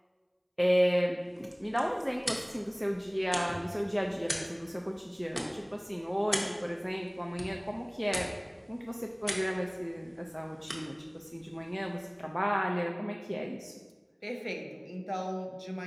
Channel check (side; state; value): both; identical; correlation 1.00